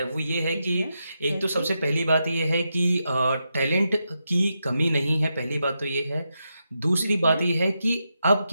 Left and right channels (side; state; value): both; inverted; correlation -0.86